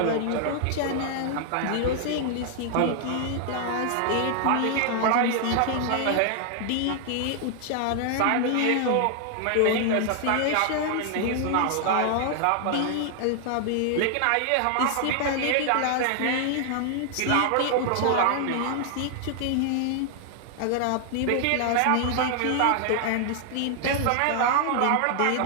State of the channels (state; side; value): different; both; correlation 0.00